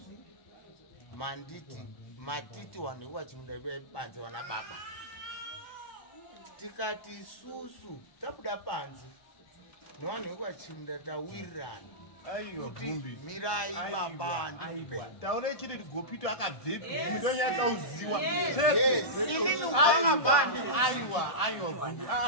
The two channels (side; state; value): right; late; 1.2 ms